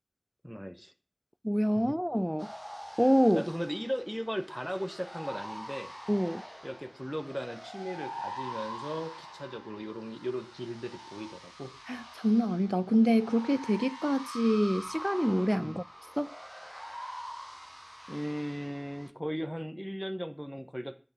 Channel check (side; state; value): both; identical; correlation 1.00